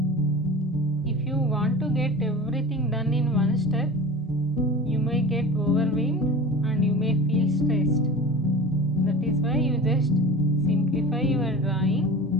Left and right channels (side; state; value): both; normal; correlation 0.36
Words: If you want to get everything done in one step, you may get overwhelmed and you may feel stressed. That is why you just simplify your drawing